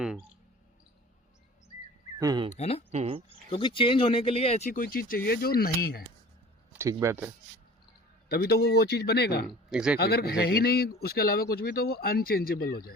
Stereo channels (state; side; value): normal; both; correlation 0.43